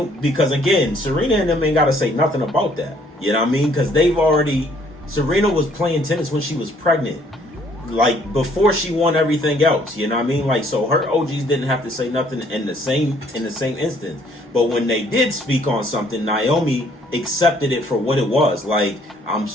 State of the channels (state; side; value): normal; both; correlation 0.63